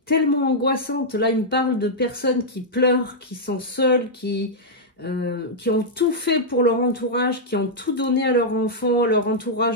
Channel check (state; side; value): normal; both; correlation -0.06